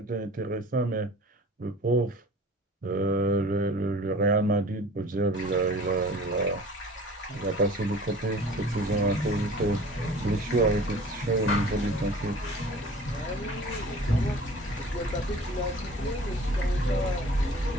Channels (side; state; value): both; normal; correlation 0.45